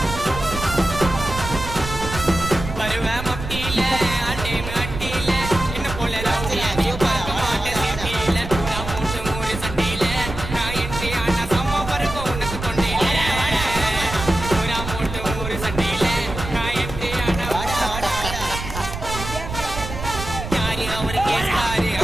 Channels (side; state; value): right; noise; rumble, 7 dB below the sound